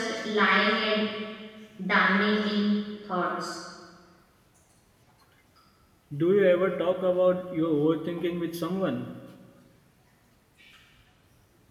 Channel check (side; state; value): both; identical; correlation 1.00